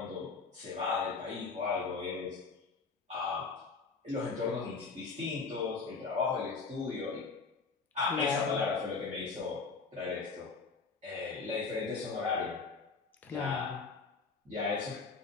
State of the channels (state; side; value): quieter; right; 4.6 dB